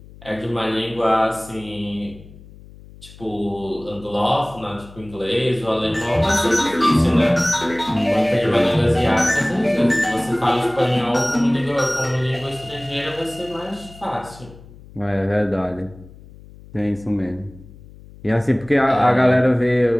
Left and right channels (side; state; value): left; noise; hum, 20 dB below the sound